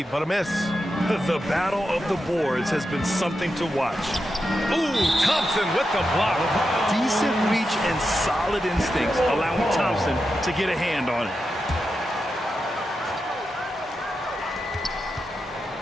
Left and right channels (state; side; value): normal; both; correlation 0.88